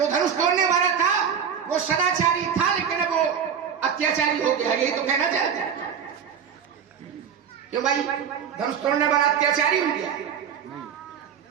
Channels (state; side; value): quieter; left; 7.6 dB